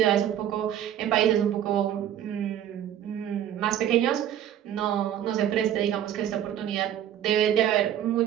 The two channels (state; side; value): quieter; left; 10.7 dB